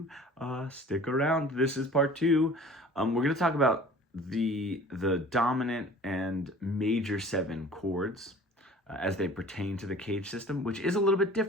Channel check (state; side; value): normal; both; correlation 0.45